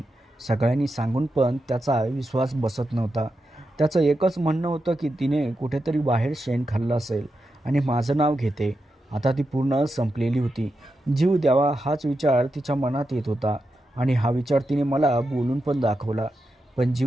सगळ्यांनी सांगून पण त्याचा विश्वास बसत नव्हता. त्याचं एकच म्हणणं होतं की तिने कुठेतरी बाहेर शेण खाल्लं असेल आणि माझं नाव घेते. आता ती पूर्ण संपलेली होती. जीव द्यावा हाच विचार तिच्या मनात येत होता आणि हा विचार तिने मला बोलून पण दाखवला. पण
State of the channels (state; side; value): normal; both; correlation 0.88